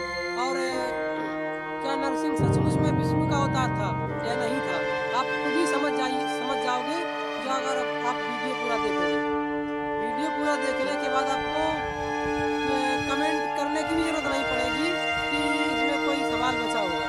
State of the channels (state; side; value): identical; both; correlation 1.00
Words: और क्या नरसिंह सचमुच में विष्णु का अवतार था या नहीं था। आप खुद ही समझ जाओगे जो अगर आप वीडियो पूरा देखोगे। वीडियो पूरा देखने के बाद आपको कमेंट करने की भी जरूरत नहीं पड़ेगी कि इसमें कोई सवाल बचा होगा।